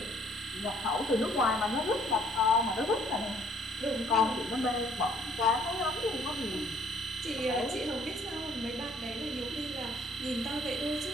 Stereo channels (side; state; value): both; normal; correlation 0.61